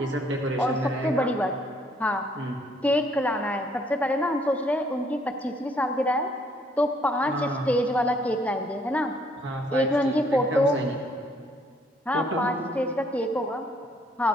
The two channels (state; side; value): normal; both; correlation 0.65